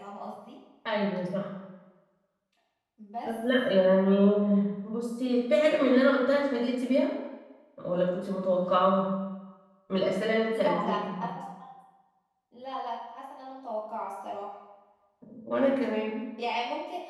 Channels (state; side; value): identical; both; correlation 1.00